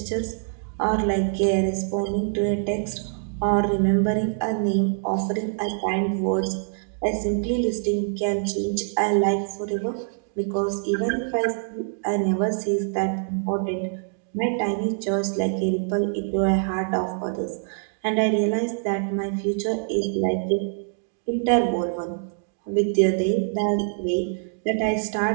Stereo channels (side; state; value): left; silent; digital silence